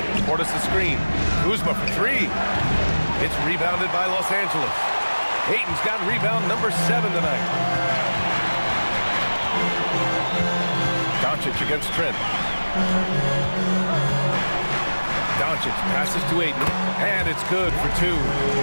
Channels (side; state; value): both; inverted; correlation -1.00